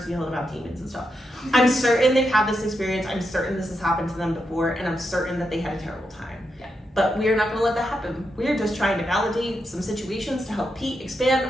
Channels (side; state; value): both; normal; correlation 0.84